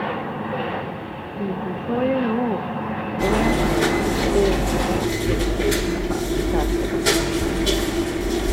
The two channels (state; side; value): identical; both; correlation 1.00